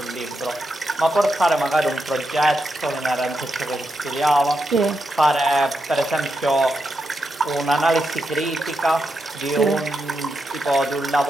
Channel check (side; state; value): both; normal; correlation 0.85